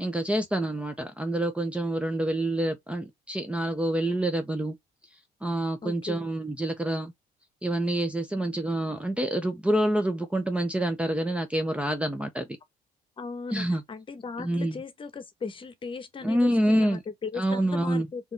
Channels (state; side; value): normal; both; correlation 0.87